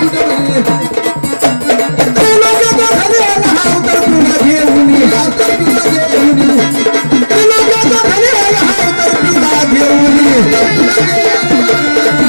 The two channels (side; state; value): both; inverted; correlation -1.00